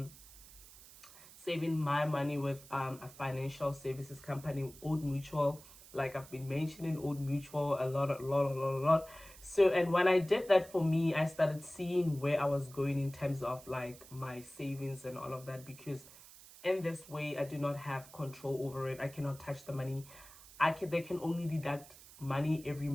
saving my money with a financial services company, Old Mutual. Like I've been mentioning Old Mutual a lot. So, and when I did that, for me, I started seeing where I was going in terms of like my savings and all of that, because in this way I do not have control over it. I cannot touch the money. They can only deduct money every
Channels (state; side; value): noise; right; hiss, 20 dB below the sound